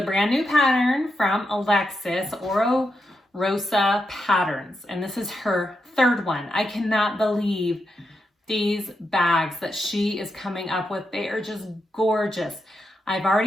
brand new pattern from Alexis, Oro Rosa Patterns, and this is her third one. I cannot believe these bags that she is coming up with. They are just gorgeous. I've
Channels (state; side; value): normal; both; correlation 0.85